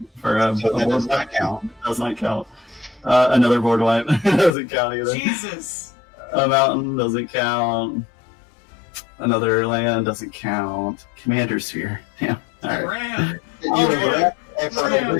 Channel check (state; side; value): drops out; right; at 4.5 s